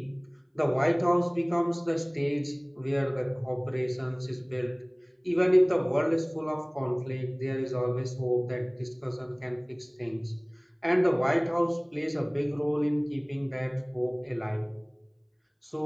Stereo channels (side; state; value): both; identical; correlation 1.00